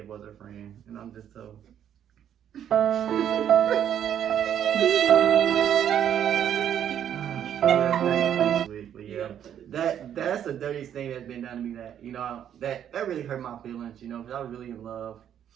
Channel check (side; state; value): left; quieter; 9.7 dB